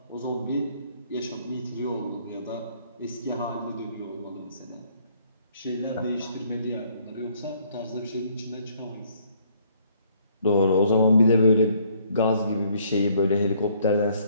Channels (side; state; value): both; inverted; correlation -0.64